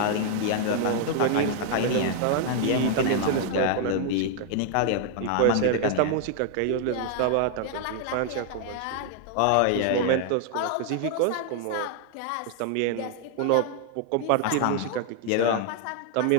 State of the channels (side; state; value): both; different; correlation 0.00